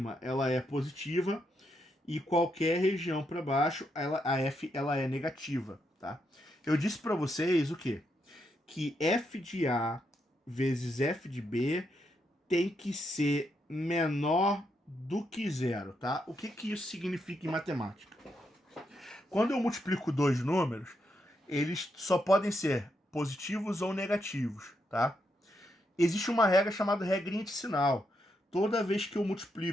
ela é positiva e qualquer região para baixo a f ela é negativa, tá? Eu disse para vocês o quê? Que f de A vezes f de B tem que ser menor do que zero, tá? O que isso significa em matemática? Quando eu multiplico dois números, eles só podem ser positivos ou negativos, tá? Existe uma regra chamada regrinha de sinal. Toda vez que eu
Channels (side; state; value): both; normal; correlation 0.80